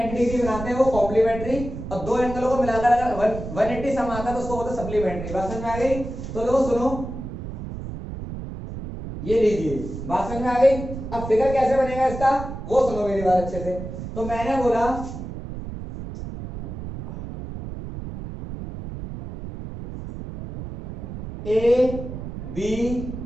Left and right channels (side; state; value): right; noise; rumble, 9 dB below the sound